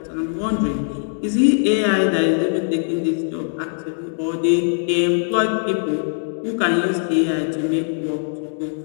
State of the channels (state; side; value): silent; right; 65 dB below the other